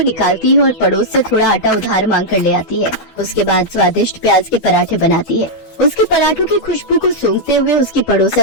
निकालती है और पड़ोस से थोड़ा आटा उधार मांग कर ले आती है। उसके बाद स्वादिष्ट प्याज के पराठे बनाती है। उसके पराठों की खुशबू को सूंघते हुए उसकी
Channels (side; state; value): right; late; 12 ms